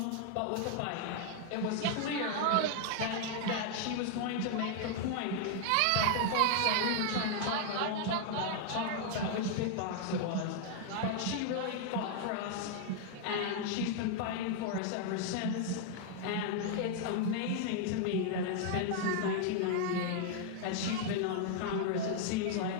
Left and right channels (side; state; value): both; different; correlation 0.00